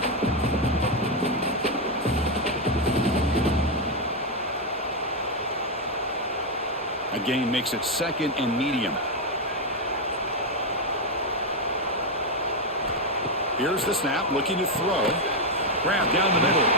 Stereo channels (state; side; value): normal; both; correlation 0.04